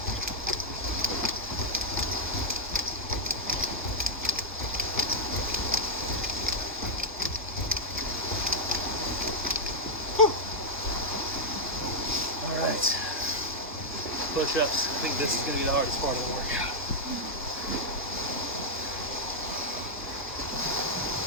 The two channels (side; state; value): both; normal; correlation -0.02